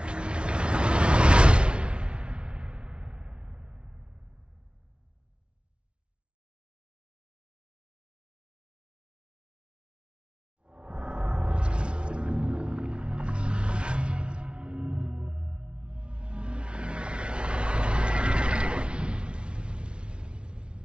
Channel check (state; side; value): late; left; 0.057 ms